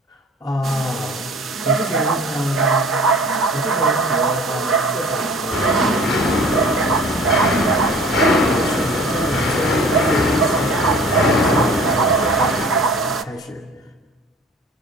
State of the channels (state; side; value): normal; both; correlation 0.46